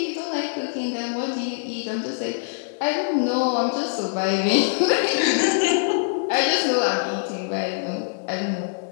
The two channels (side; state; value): right; silent; digital silence